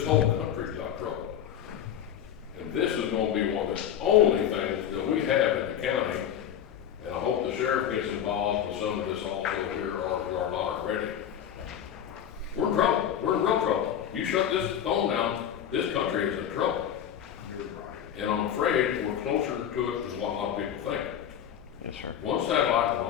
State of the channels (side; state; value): right; quieter; 9.6 dB